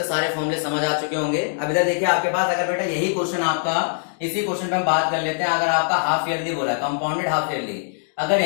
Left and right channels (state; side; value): silent; right; digital silence